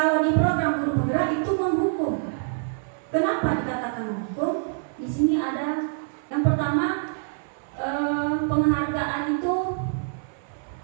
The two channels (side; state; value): left; silent; 57 dB below the other